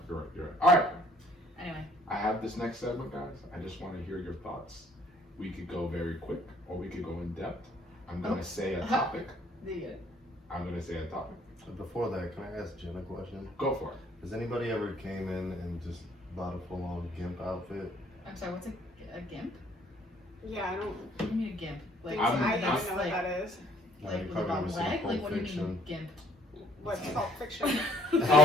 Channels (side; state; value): both; normal; correlation 0.62